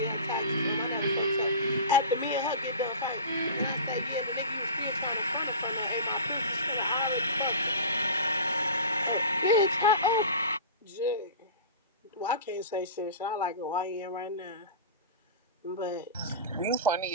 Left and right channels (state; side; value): inverted; both; correlation -0.33